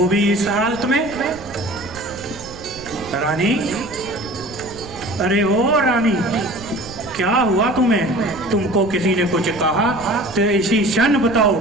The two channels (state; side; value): noise; right; rumble, 17 dB below the sound